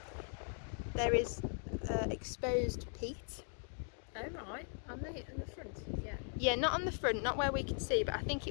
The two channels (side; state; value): right; silent; 52 dB below the other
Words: There is exposed peat. Oh right, on the front, yeah. Yeah, not on the front, not where we could see, but I think